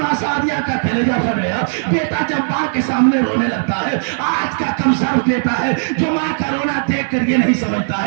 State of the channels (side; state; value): left; silent; digital silence